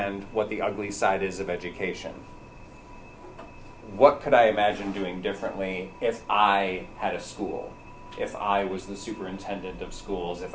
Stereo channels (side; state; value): both; identical; correlation 1.00